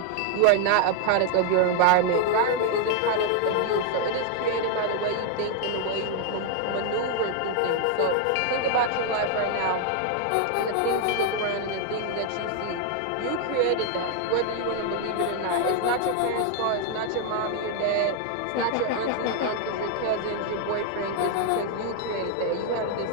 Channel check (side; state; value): both; different; correlation 0.00